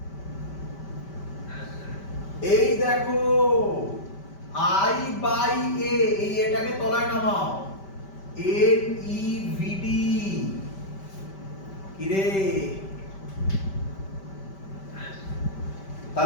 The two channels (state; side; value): late; right; 5.1 ms